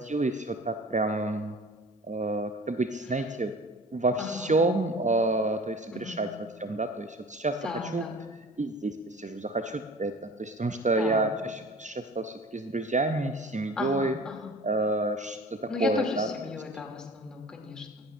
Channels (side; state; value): both; normal; correlation 0.42